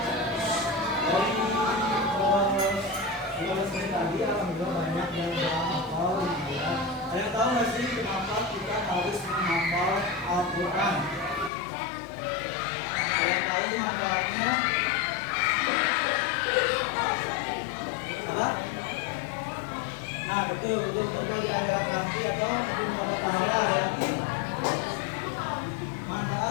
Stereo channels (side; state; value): right; drops out; at 11.5 s